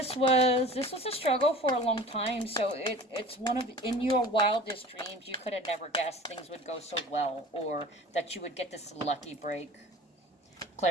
was a struggle for a long time. So it's one of, in your wildest dreams, you could have never guessed things would go so well, or that you would get this lucky break.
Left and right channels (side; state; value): both; normal; correlation 0.41